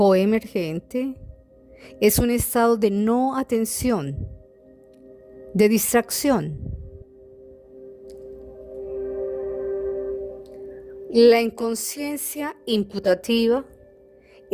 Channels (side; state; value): both; identical; correlation 1.00